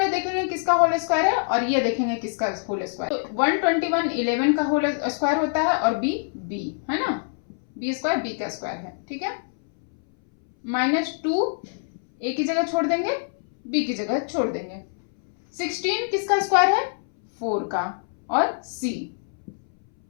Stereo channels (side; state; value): right; silent; 61 dB below the other